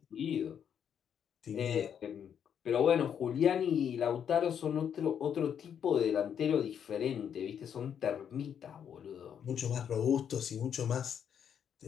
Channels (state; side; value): quieter; right; 8.4 dB